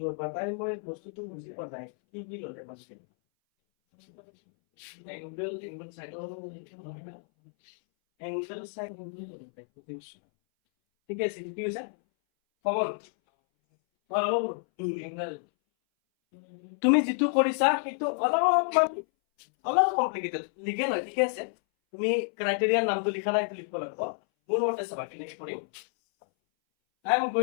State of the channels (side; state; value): right; silent; 58 dB below the other